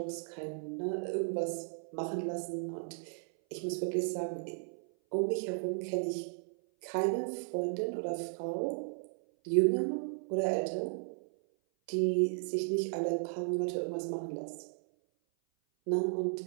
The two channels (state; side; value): silent; left; 54 dB below the other